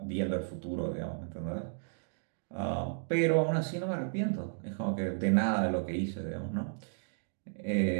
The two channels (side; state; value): left; silent; digital silence